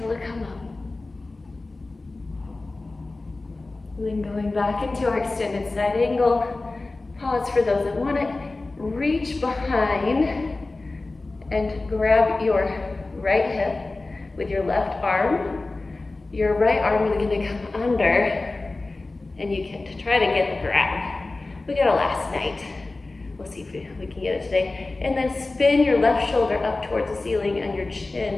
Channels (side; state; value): right; quieter; 3.2 dB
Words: to come up. And then going back into our extended side angle. Pause for those that want it. Reach behind and grab your right hip with your left arm. Your right arm is going to come under, and you can try to get the grab. We got it last night. We'll see if we can get it today. And then spin your left shoulder up towards the ceiling, and your